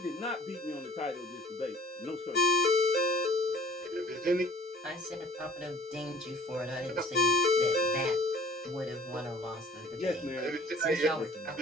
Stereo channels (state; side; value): normal; both; correlation 0.51